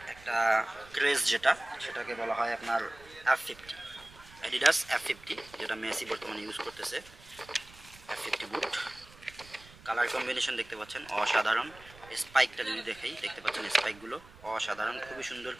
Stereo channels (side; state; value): right; noise; rumble, 22 dB below the sound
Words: একটা ক্রেজ, সেটাকে বলা হয় আপনার F50, অ্যাডিডাস F50, যেটা মেসি বর্তমানে ইউজ করতেছে। F50 বুট, কালার কম্বিনেশন দেখতে পাচ্ছেন অসাধারণ। স্পাইকটা যদি দেখাই, দেখতে পাচ্ছেন স্পাইকগুলো অসাধারণ, খুবই সুন্দর,